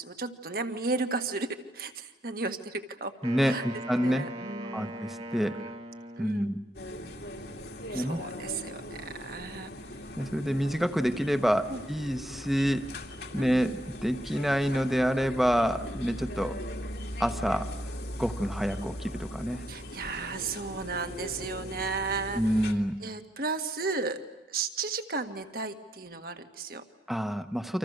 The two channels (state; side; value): normal; both; correlation 0.78